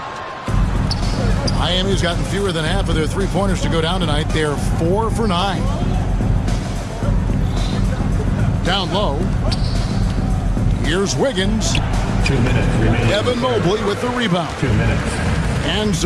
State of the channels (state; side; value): identical; both; correlation 1.00